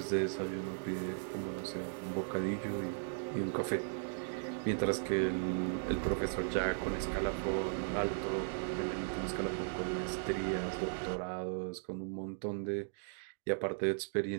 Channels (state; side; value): silent; left; digital silence